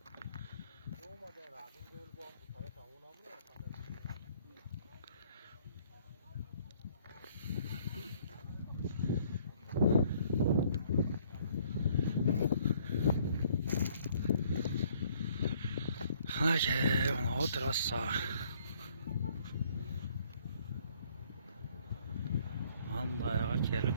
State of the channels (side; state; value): both; inverted; correlation -0.62